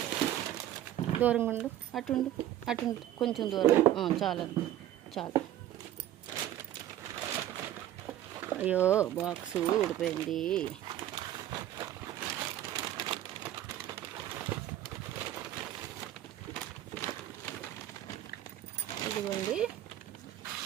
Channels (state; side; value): quieter; left; 12.6 dB